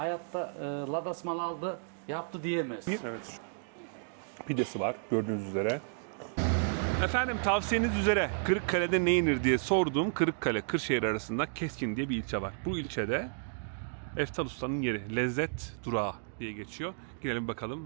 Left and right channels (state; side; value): silent; left; digital silence